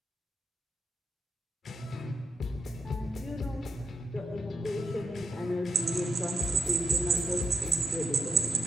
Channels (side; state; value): both; normal; correlation 0.81